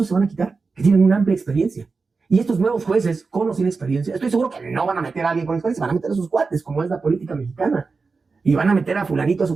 se van a quitar, que tienen una amplia experiencia. Y estos nuevos jueces, con o sin experiencia, estoy seguro que no van a meter a alguien con experiencia, van a meter a sus cuates, como es la política mexicana. Y van a meter a fulanito, a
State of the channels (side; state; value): left; quieter; 4.4 dB